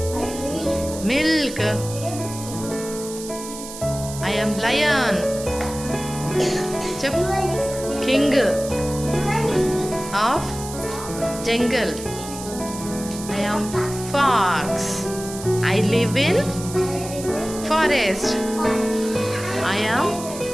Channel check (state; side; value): noise; right; hiss, 12 dB below the sound